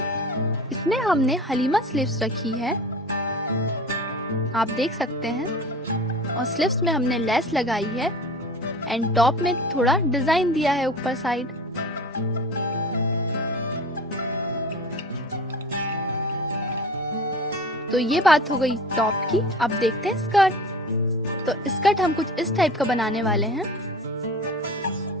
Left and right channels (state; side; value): normal; both; correlation 0.37